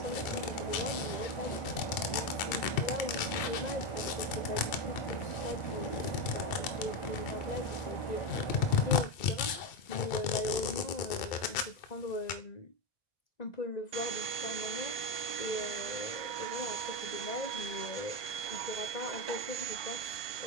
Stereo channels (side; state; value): right; late; 2.3 ms